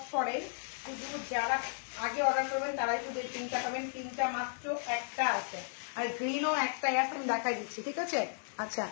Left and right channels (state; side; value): silent; right; 55 dB below the other